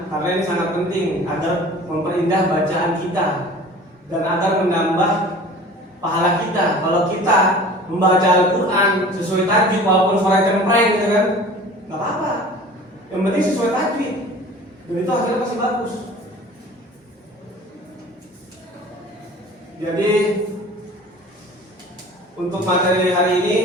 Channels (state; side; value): normal; both; correlation 0.43